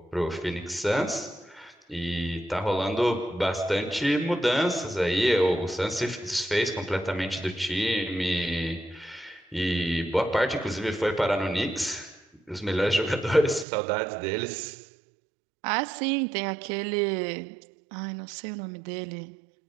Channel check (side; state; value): left; drops out; at 13.7 s